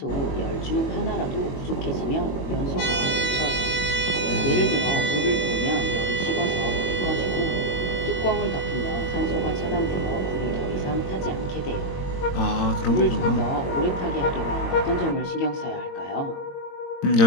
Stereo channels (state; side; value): late; right; 22 ms